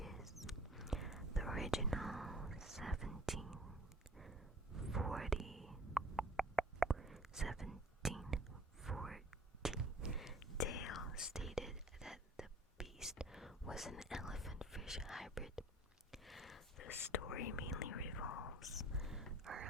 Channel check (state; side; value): normal; both; correlation 0.48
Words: English hybrid. The story mainly revolves